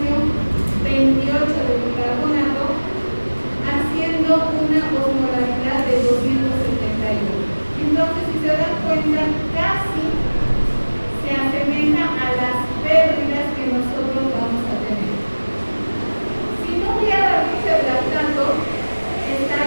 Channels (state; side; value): inverted; both; correlation -1.00